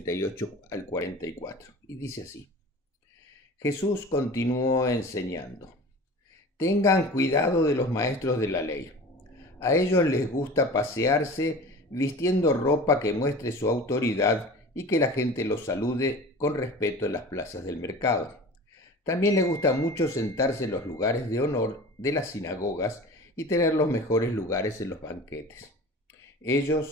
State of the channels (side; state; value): both; normal; correlation 0.38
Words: al 44. Y dice así: Jesús continuó enseñando. Tengan cuidado de los maestros de la ley. A ellos les gusta pasearse vistiendo ropa que muestre su autoridad y que la gente los salude con respeto en las plazas del mercado. También les gusta mucho sentarse en los lugares de honor de las sinagogas y tener los mejores lugares en los banquetes.